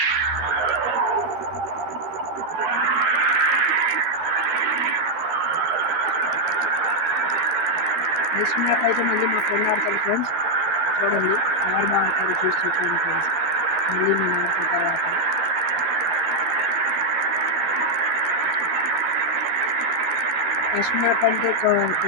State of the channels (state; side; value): late; left; 11 ms